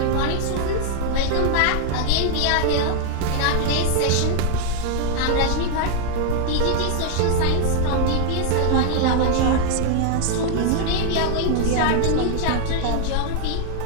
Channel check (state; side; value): different; both; correlation 0.00